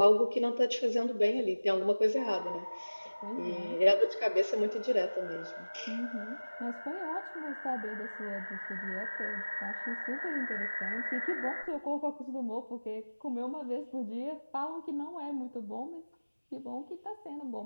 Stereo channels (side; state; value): both; inverted; correlation -1.00